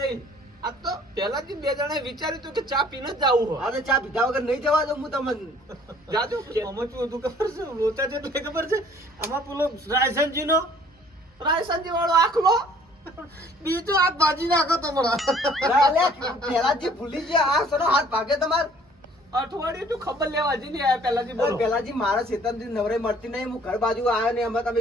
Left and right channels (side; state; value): both; normal; correlation 0.56